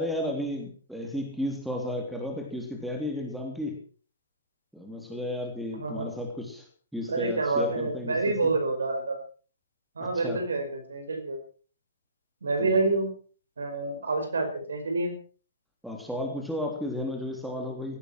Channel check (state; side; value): inverted; both; correlation -0.39